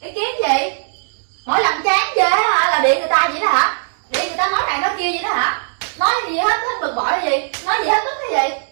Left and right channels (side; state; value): left; silent; digital silence